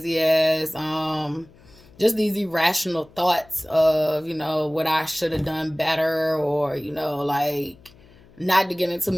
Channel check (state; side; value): noise; left; hum, 26 dB below the sound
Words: ass, just these irrational thoughts of, what I should have done better, or, like, not to get into